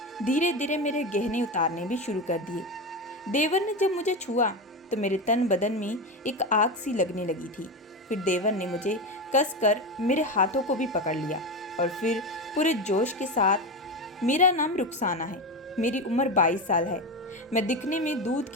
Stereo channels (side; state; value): both; normal; correlation 0.18